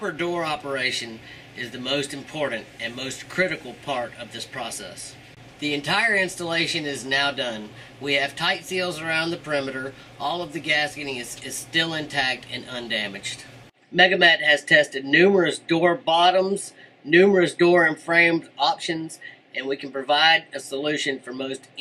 door operation is the most important and most critical part of this process. The entire installation is now done. We have tight seals around the perimeter. All of the gasketing is still intact and undamaged. Megamet has tested numerous door bottoms, numerous door and frame options, and we can provide a solution for most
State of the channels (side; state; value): both; identical; correlation 1.00